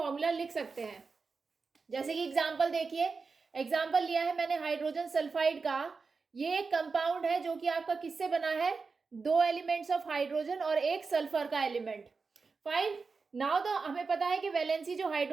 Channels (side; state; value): left; quieter; 4.6 dB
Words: लिख सकते हैं। जैसे कि एग्जांपल देखिए, एग्जांपल लिया है मैंने हाइड्रोजन सल्फाइड का। ये एक कंपाउंड है जो कि आपका किससे बना है, दो एलिमेंट्स ऑफ हाइड्रोजन और एक सल्फर का एलिमेंट। फाइन। नाउ तो हमें पता है कि वैलेंसी जो